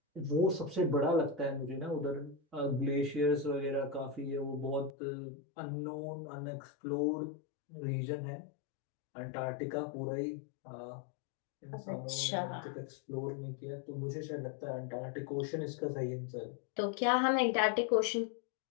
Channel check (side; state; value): right; drops out; at 4.9 s